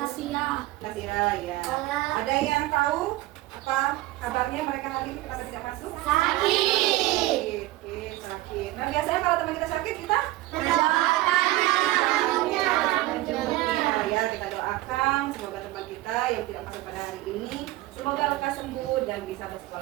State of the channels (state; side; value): quieter; left; 17.6 dB